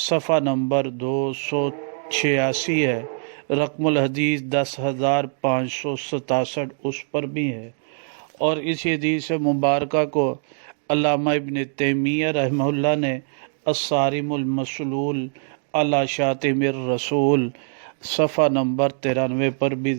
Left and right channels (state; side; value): silent; left; 63 dB below the other